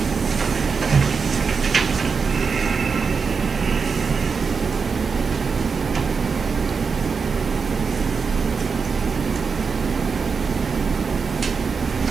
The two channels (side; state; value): left; quieter; 5.3 dB